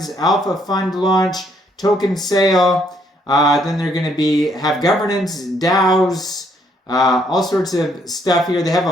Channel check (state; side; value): normal; both; correlation 0.69